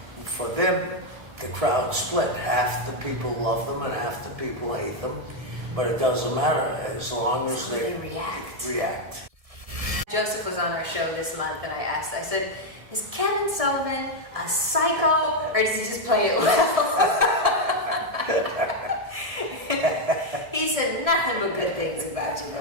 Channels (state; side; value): late; left; 1.7 ms